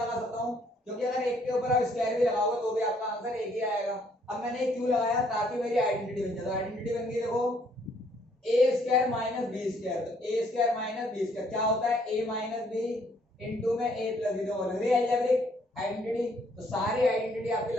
सकता हूँ, क्योंकि अगर एक के ऊपर आप स्क्वायर भी लगाओगे तो भी आपका आंसर एक ही आएगा। अब मैंने ये क्यों लगाया, ताकि मेरी आइडेंटिटी बन जाए। तो आइडेंटिटी बन गई, देखो ए स्क्वायर माइनस बी स्क्वायर, तो ए स्क्वायर माइनस बी स्क्वायर क्या होता है, ए माइनस बी इंटू में ए प्लस बी, तो अलजेब्रिक आइडेंटिटी। तो सारी आइडेंटिटी आपकी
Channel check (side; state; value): both; normal; correlation 0.66